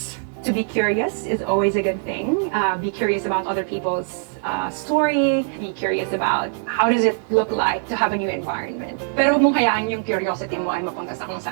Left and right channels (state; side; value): silent; left; 62 dB below the other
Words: To be curious is always a good thing. Be curious about other people's story. Be curious about how does it look like to have a new environment. Pero huwag mong hayaan yung curiosity mo ay mapunta sa kung